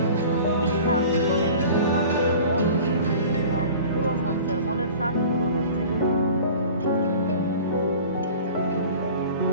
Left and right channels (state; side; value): inverted; both; correlation -0.42